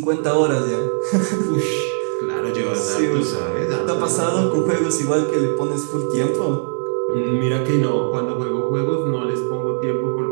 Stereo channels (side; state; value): left; silent; 60 dB below the other